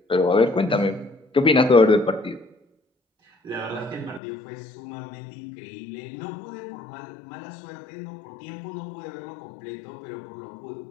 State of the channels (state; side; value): drops out; right; at 4.2 s